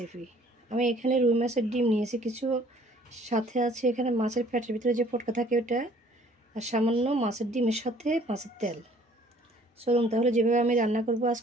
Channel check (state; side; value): normal; both; correlation 0.57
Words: আমি এখানে রুই মাছের ডিম নিয়েছি কিছু, সাথে আছে এখানে মাছের পেটের ভিতরে যে পটকা থাকে ওটা, আর সামান্য মাছের ডিমের সাথে মাছের তেল। চলুন তাহলে যেভাবে আমি রান্না করব